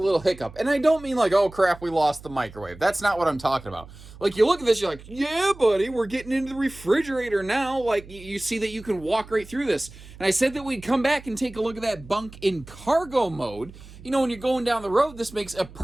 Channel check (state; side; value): noise; right; hum, 18 dB below the sound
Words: hiccup. And I don't mean like, oh, crap, we lost the microwave. That's not what I'm talking about. Like, you look at this, you're like, yeah, buddy, we're getting into the refrigerator now. Like, you see that you can walk right through this. And I said that we'd come back and take a look at that bunk in cargo mode. When you're going down the road, this makes a